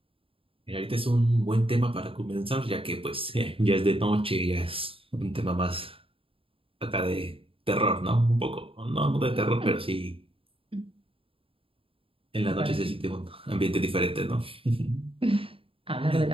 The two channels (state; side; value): late; left; 0.27 ms